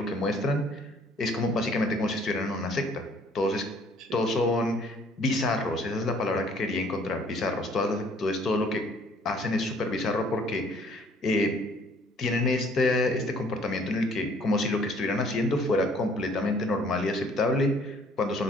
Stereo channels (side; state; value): both; normal; correlation 0.59